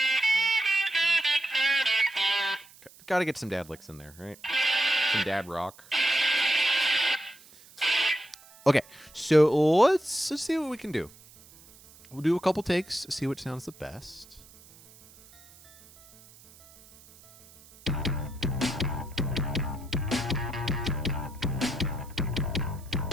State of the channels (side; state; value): right; noise; hiss, 24 dB below the sound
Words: Gotta get some dad licks in there, right? Some dad rock. Okay, so let's see what we can do. We'll do a couple takes, see what sounds the best. You